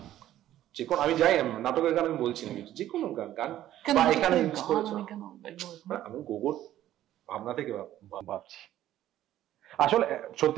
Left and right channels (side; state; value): left; quieter; 12.9 dB